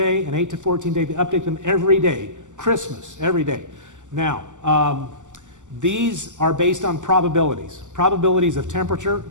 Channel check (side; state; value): left; late; 0.86 ms